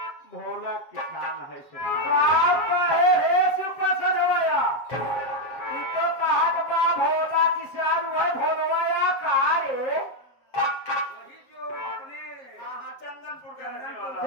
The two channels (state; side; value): late; right; 7.2 ms